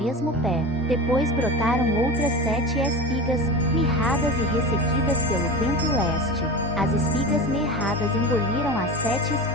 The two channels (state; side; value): normal; both; correlation 0.29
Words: pé. Depois brotaram outras 7 espigas, mirradas e ressequidas pelo vento leste. As espigas mirradas engoliram as 7